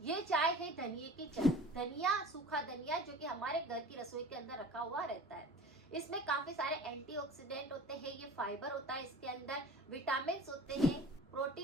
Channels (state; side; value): normal; both; correlation 0.40